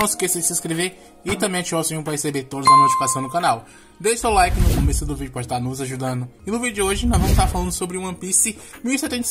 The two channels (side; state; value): both; identical; correlation 1.00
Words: esqueça de se inscrever e também ativar o sininho para receber todas as notificações no canal. Deixe seu like no começo do vídeo para estar nos ajudando. E no vídeo de hoje nós vamos estar falando sobre One Piece